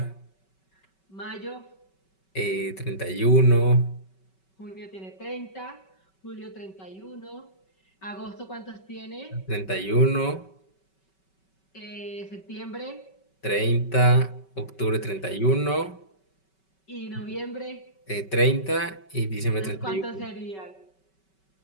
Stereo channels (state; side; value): late; right; 5.3 ms